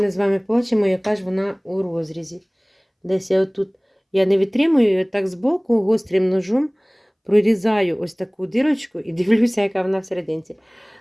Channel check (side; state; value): both; identical; correlation 1.00